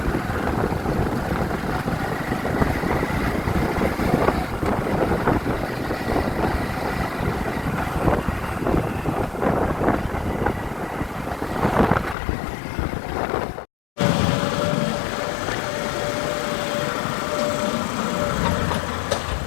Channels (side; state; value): right; drops out; at 12.2 s